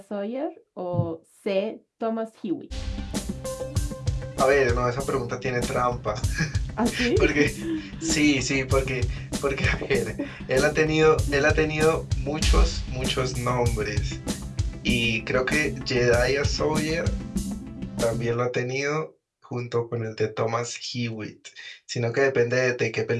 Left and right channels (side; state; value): both; identical; correlation 1.00